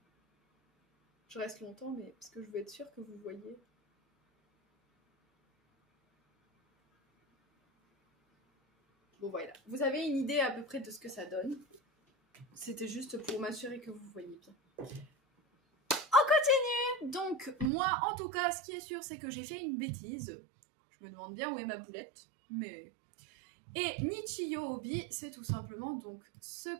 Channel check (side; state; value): left; drops out; at 17.7 s